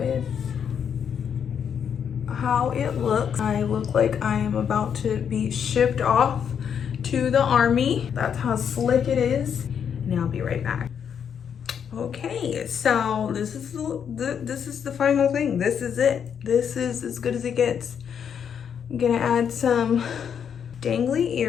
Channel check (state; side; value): quieter; right; 7.8 dB